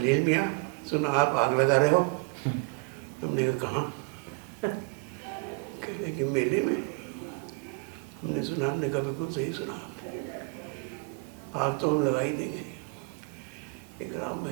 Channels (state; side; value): quieter; left; 32.1 dB